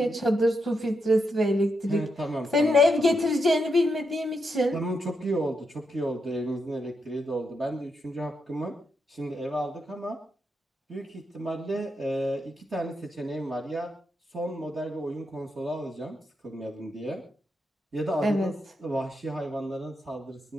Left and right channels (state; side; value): normal; both; correlation 0.82